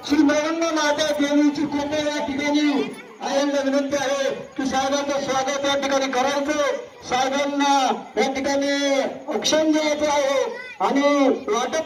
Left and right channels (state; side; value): identical; both; correlation 1.00